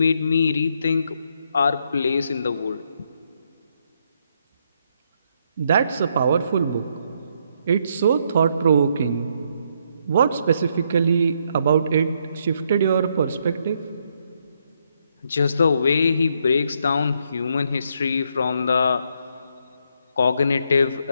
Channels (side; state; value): both; inverted; correlation -0.74